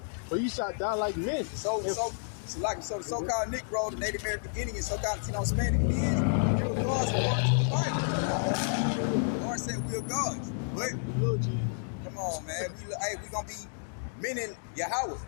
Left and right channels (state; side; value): silent; right; digital silence